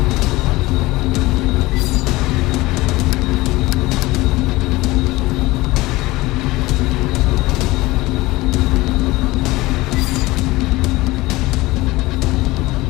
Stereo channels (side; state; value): right; quieter; 20.0 dB